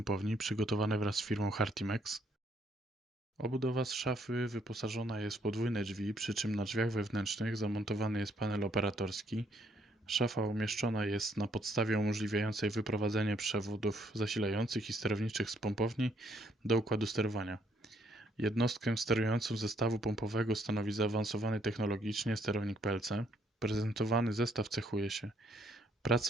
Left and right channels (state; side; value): normal; both; correlation 0.69